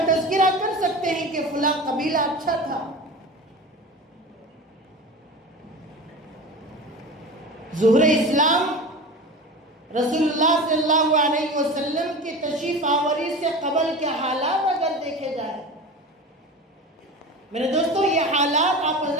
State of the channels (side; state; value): both; normal; correlation 0.32